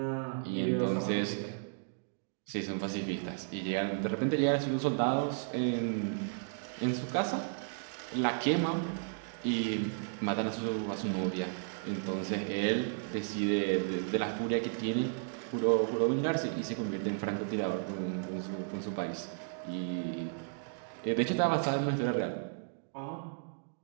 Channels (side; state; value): left; silent; digital silence